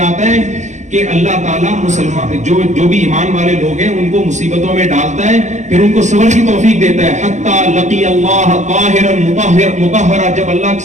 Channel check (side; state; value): left; late; 0.35 ms